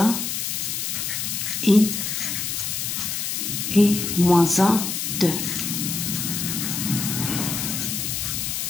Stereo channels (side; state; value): left; noise; hiss, 2 dB below the sound